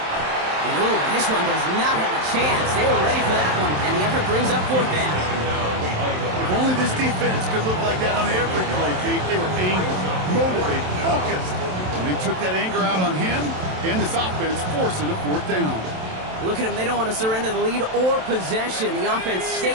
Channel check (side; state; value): left; late; 27 ms